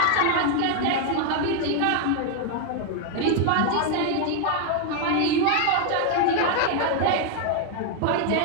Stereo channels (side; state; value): both; different; correlation 0.00